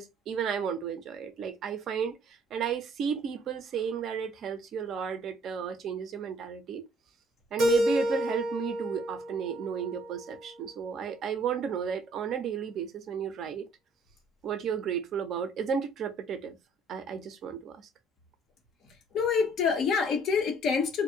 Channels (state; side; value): normal; both; correlation 0.59